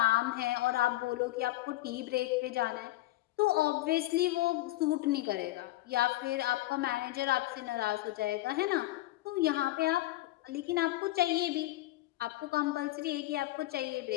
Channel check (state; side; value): quieter; right; 16.9 dB